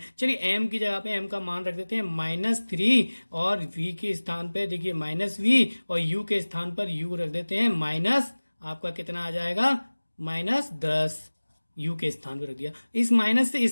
चलिए m की जगह पे m का मान रख देते हैं -3, और v के स्थान पे देखिए -v, और u के स्थान पर u रख देते हैं माइनस, आपका कितना आ जाएगा? -10। u के स्थान पर रख दिया। इस माइनस से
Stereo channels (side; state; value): both; inverted; correlation -1.00